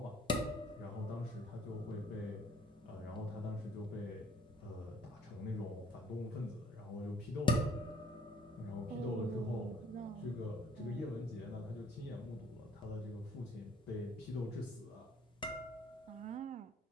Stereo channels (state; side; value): normal; both; correlation 0.59